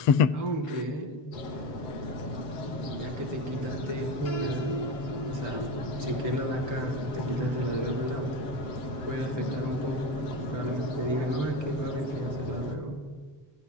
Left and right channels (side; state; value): right; late; 7.7 ms